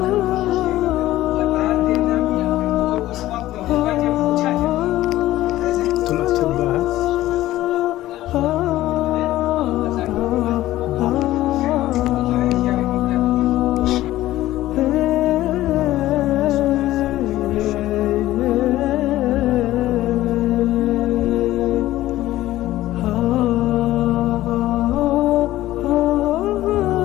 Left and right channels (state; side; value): quieter; right; 15.3 dB